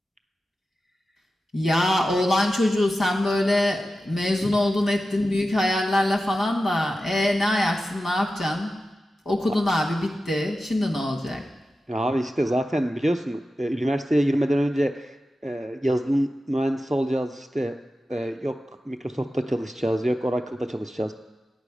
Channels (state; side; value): normal; both; correlation 0.93